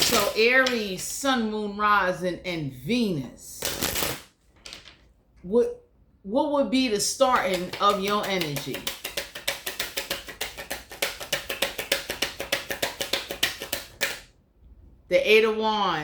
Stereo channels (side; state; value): both; identical; correlation 1.00